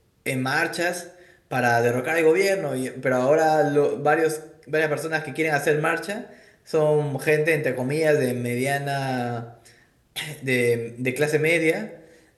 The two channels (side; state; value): both; identical; correlation 1.00